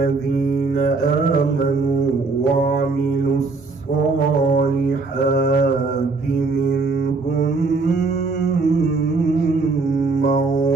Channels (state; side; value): quieter; left; 3.9 dB